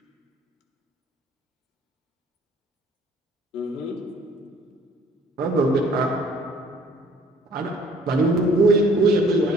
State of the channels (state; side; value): normal; both; correlation 0.57